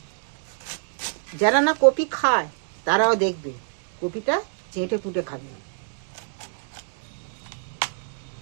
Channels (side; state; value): left; silent; digital silence